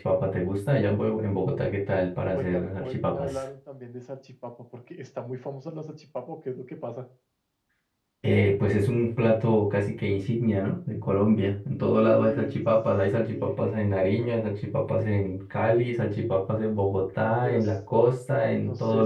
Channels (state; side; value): identical; both; correlation 1.00